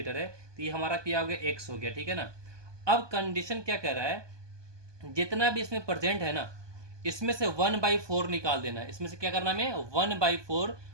है, तो ये हमारा क्या हो गया, x हो गया, ठीक है ना। अब कंडीशन क्या कह रहा है, जितना भी इसमें प्रेजेंट है ना इसमें से 1/4 निकाल देना है। इसमें से क्या करना है, 1/4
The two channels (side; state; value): left; late; 1.2 ms